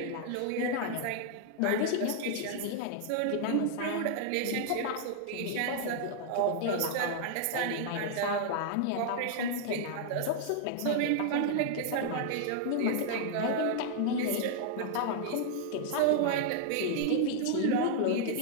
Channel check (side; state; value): both; different; correlation -0.01